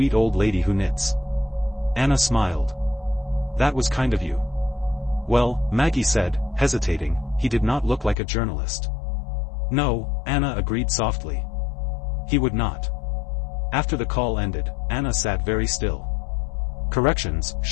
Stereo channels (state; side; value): drops out; right; at 8.2 s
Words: old lady who knits." Anna smiled. "That was kind of you." "Well," Maggie said, hesitating, "he did not look like a journalist." "No," Anna agreed softly. "He would not." After the call ended, Anna sat very still. Corrections,